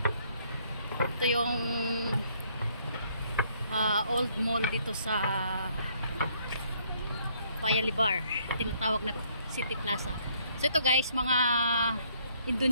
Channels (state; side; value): inverted; both; correlation -0.66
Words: Ito yung old mall dito sa Paya-Lebar, tinatawag na City Plaza. So ito guys, mga